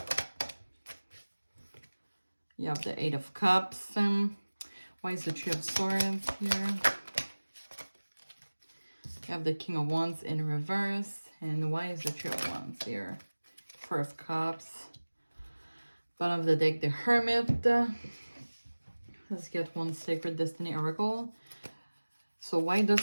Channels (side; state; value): both; inverted; correlation -1.00